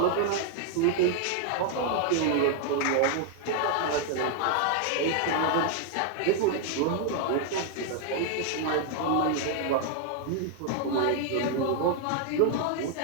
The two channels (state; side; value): different; both; correlation 0.00